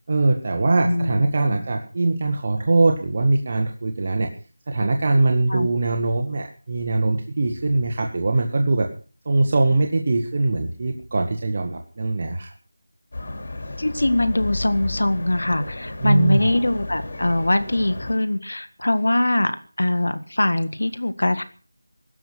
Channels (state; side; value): inverted; both; correlation -0.96